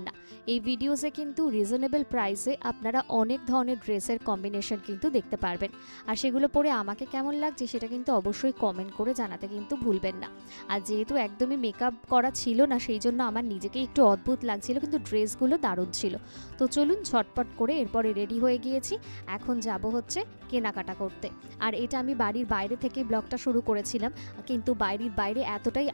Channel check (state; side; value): inverted; both; correlation -1.00